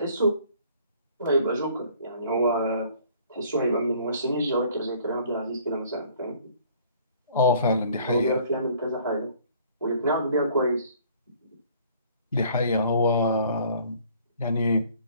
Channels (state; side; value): inverted; both; correlation -0.56